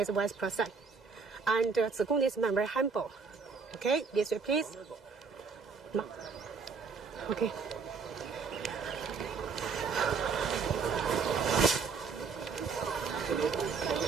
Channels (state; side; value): quieter; left; 5.2 dB